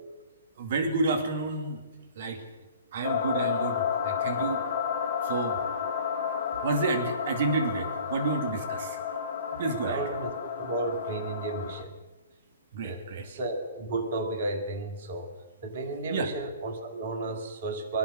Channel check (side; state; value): both; inverted; correlation -0.45